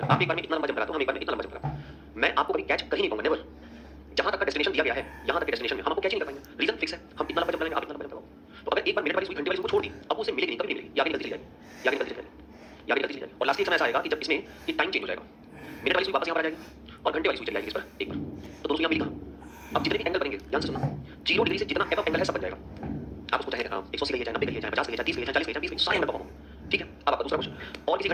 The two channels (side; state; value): both; identical; correlation 1.00